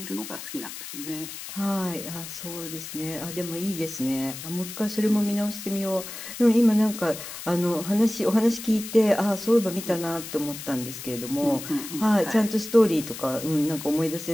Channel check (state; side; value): noise; left; hiss, 10 dB below the sound